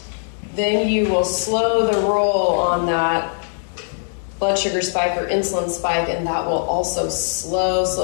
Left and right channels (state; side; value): silent; right; 65 dB below the other